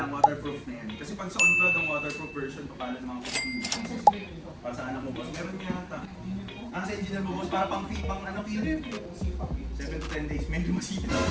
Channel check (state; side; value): identical; both; correlation 1.00